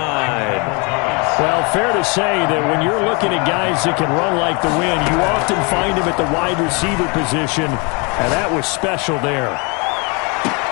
Well, fair to say that when you're looking at guys that can run like the wind, you often find them at the wide receiver position, and that was special there.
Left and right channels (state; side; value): quieter; right; 31.2 dB